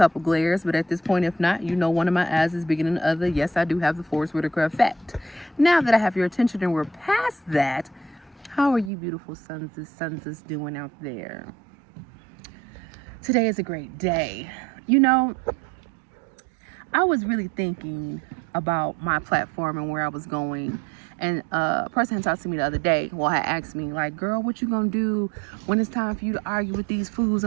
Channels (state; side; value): drops out; left; at 8.9 s